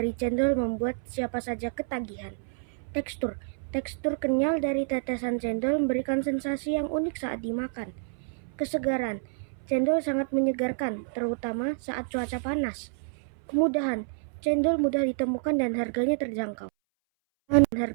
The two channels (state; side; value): silent; left; 59 dB below the other